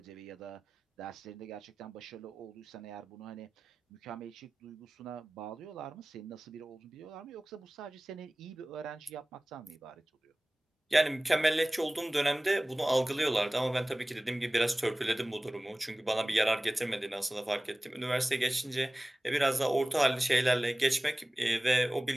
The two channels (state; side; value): normal; both; correlation 0.98